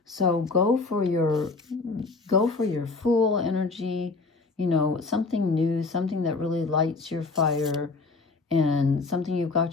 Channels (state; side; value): quieter; right; 3.9 dB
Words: So go for your Fool energy, you know, something new, something that really lights your fire, and something you've